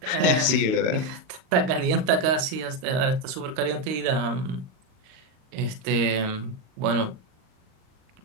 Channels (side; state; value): left; late; 38 ms